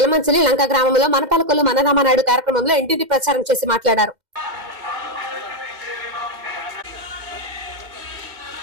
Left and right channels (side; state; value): left; late; 2.1 ms